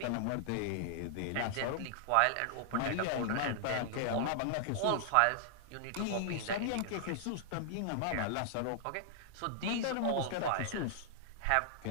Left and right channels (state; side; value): different; both; correlation -0.01